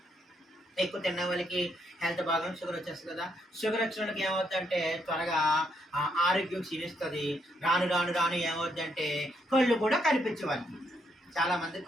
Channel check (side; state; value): both; normal; correlation 0.75